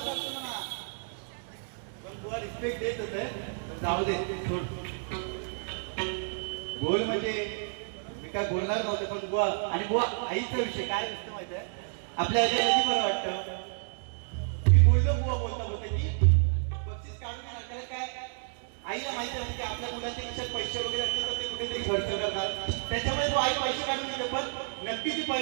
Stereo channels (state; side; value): silent; left; digital silence